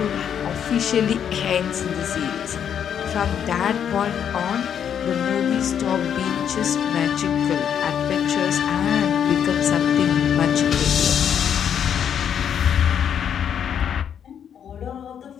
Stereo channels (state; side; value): quieter; right; 8.6 dB